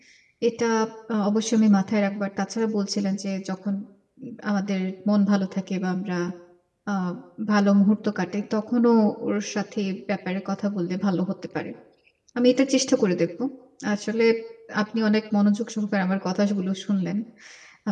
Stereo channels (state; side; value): identical; both; correlation 1.00